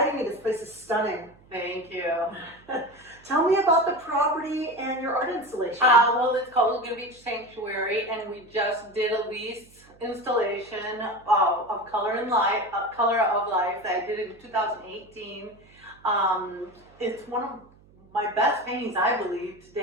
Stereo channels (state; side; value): noise; right; hum, 27 dB below the sound